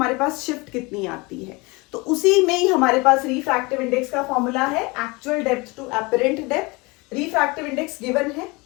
पास शिफ्ट कितनी आती है। तो उसी में ही हमारे पास रिफ्रैक्टिव इंडेक्स का फॉर्मूला है, actual depth to apparent depth. Refractive index given है,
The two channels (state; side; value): quieter; right; 25.7 dB